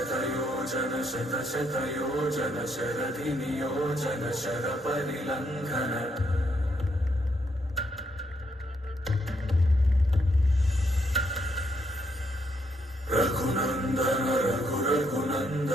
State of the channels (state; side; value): normal; both; correlation 0.75